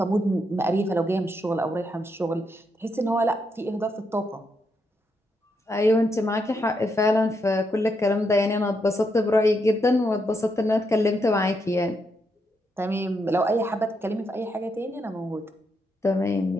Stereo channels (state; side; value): normal; both; correlation 0.80